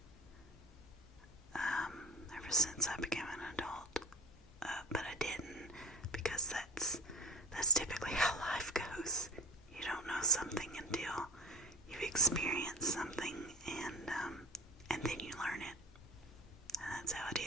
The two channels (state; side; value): normal; both; correlation 0.31